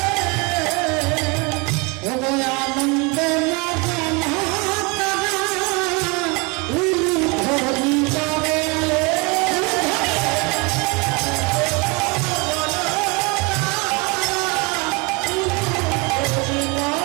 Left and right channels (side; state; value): left; quieter; 29.0 dB